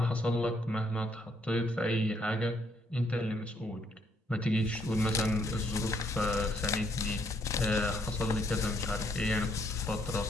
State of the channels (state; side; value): normal; both; correlation 0.70